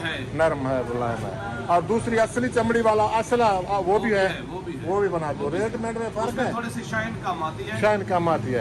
ہے، نرم ہے، ملائم ہے۔ اور دوسری اصلی چمڑی والا اصلا وہ بھی ہے، وہ بھی بنا دو۔ ریٹ میٹ میں فرق ہے، تھوڑی سی شائن کم آتی ہے، شائن کم آتی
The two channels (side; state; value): both; identical; correlation 1.00